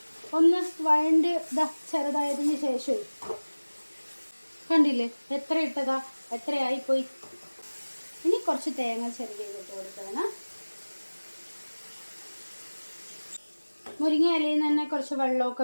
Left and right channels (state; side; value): inverted; both; correlation -1.00